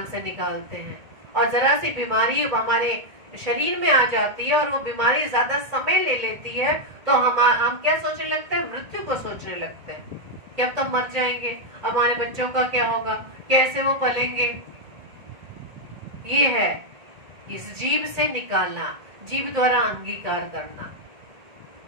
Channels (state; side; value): late; left; 1.8 ms